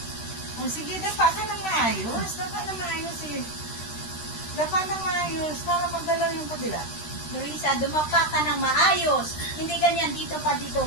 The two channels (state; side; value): late; right; 13 ms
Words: O sige, dapa ka na maayos. Dapa na maayos eh. Dapa na maayos para magalaw yung kabila. Marisa, dumapa ka ng maayos. Hindi ganyan dito pa